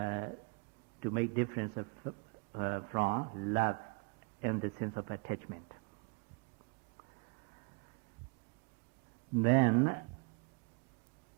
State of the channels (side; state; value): left; quieter; 32.7 dB